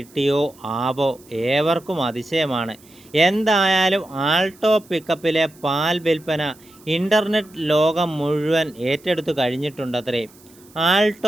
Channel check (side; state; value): right; noise; hiss, 26 dB below the sound